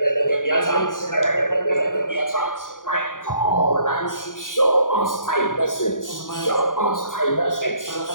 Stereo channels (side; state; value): right; late; 0.88 ms